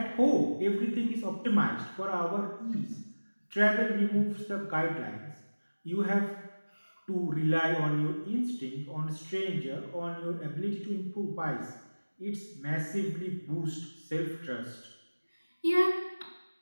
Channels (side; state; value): both; inverted; correlation -1.00